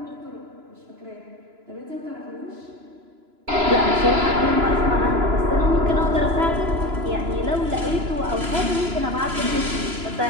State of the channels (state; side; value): late; left; 2.9 ms